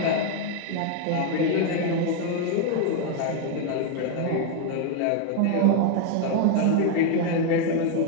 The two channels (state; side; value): different; both; correlation 0.01